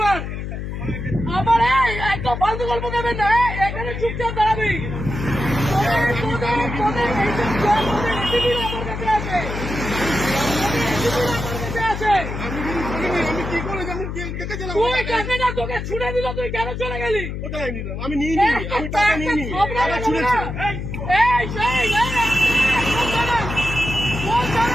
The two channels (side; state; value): left; noise; hum, 6 dB below the sound